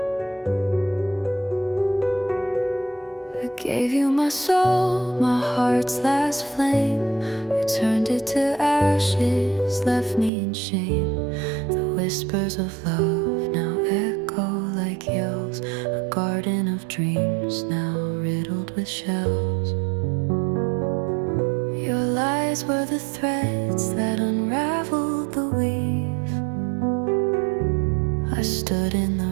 gave you my soul, my heart's last flame. You turned it to ashes, left me in shame. The whispers of love now echo like yells. A garden of dreams now riddled with shells. Your lies were the threads that unraveled the weave. I stood in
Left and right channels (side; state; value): left; drops out; at 10.3 s